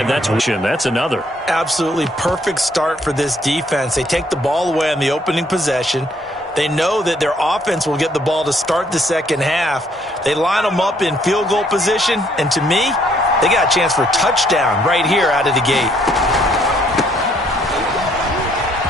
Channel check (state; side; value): normal; both; correlation 0.67